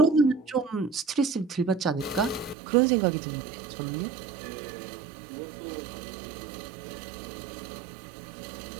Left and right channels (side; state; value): left; drops out; at 2.6 s